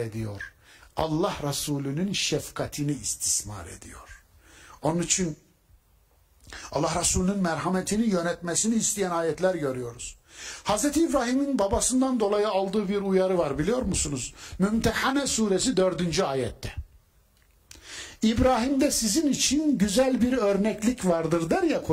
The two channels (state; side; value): identical; both; correlation 1.00